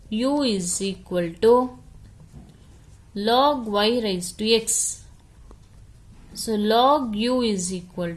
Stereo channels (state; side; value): identical; both; correlation 1.00